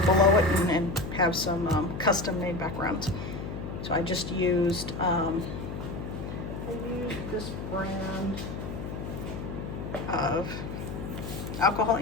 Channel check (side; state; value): left; noise; hum, 7 dB below the sound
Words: below it and have some custom made backgrounds. So I just used, this brand of alcohol